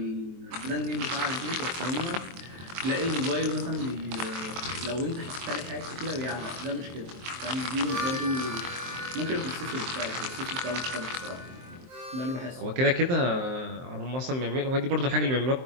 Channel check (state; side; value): late; left; 23 ms